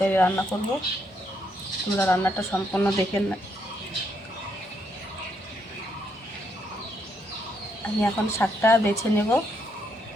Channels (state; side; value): normal; both; correlation 0.75